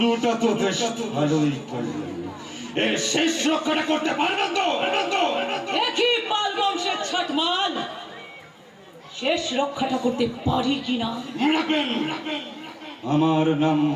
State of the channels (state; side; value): identical; both; correlation 1.00